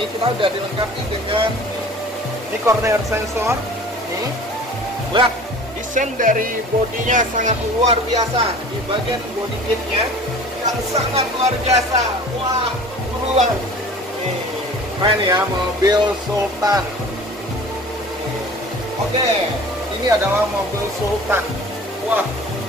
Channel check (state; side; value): normal; both; correlation 0.43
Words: kita udah dilengkapi dengan ini corner sensor. Nih, lihat desain dari bodinya sangat luar biasa. Di bagian body kitnya yang sangat luar biasa. Wah, buruan. Nih, keren ya mobil Sultan. Oke, ini adalah mobil Sultan. Wah,